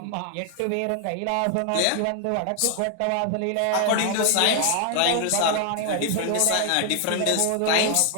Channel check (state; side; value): different; both; correlation 0.00